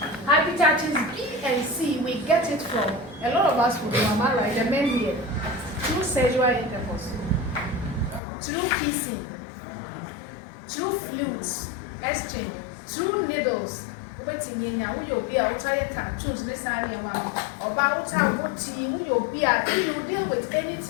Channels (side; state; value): right; drops out; at 8.2 s